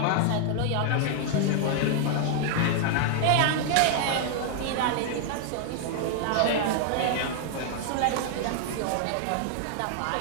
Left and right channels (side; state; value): both; different; correlation 0.00